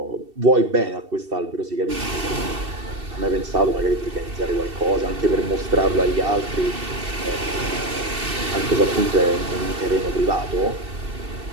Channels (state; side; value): late; left; 2.7 ms